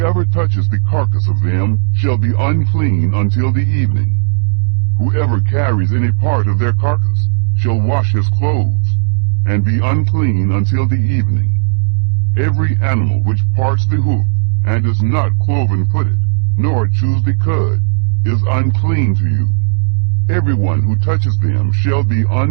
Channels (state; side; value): silent; left; digital silence